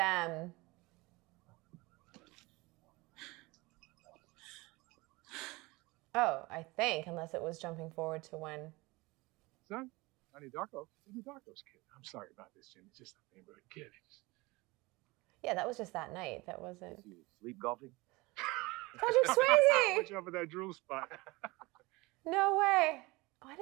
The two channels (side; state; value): left; quieter; 23.0 dB